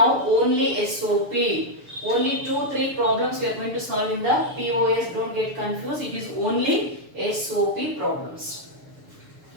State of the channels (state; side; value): late; left; 6.8 ms